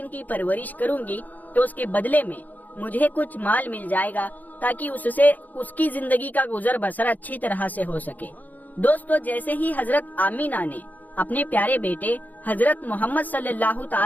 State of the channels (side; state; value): right; late; 0.082 ms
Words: کی پرورش کروں گی تو اس کے بدلے میں مجھے کچھ مال مل جائے گا تاکہ اس سے اس کی زندگی کا گزر بسر اچھی طرح سے ہو سکے۔ دوستو جیسے ہی حضرت آمینہ نے اپنے پیارے بیٹے حضرت محمد صلی اللہ